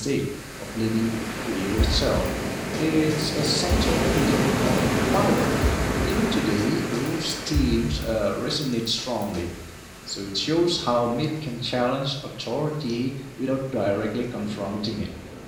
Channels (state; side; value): identical; both; correlation 1.00